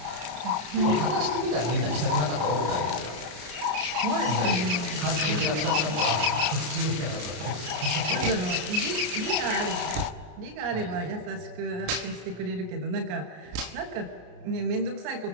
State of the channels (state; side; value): late; left; 33 ms